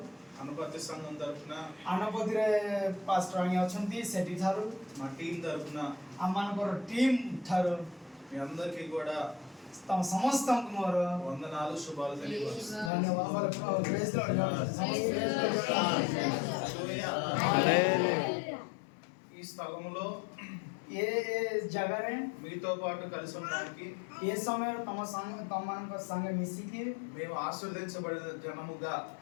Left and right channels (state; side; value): drops out; right; at 12.9 s